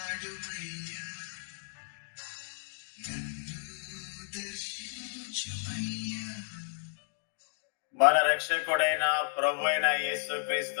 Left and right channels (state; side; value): silent; right; digital silence